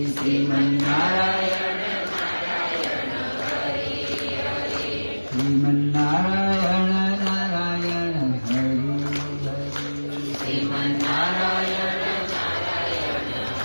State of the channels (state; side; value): inverted; both; correlation -1.00